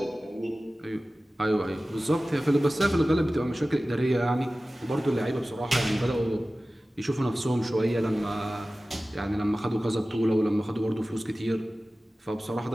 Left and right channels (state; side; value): normal; both; correlation 0.96